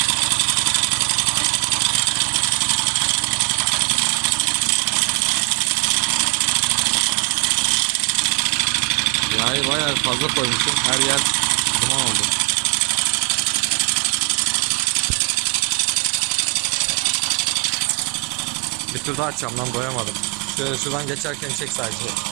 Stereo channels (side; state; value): left; quieter; 35.8 dB